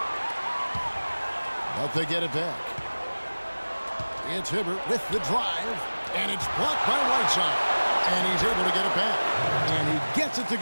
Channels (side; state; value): both; inverted; correlation -1.00